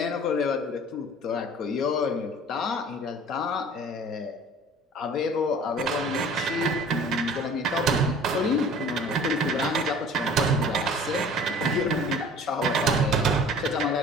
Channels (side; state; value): both; normal; correlation 0.46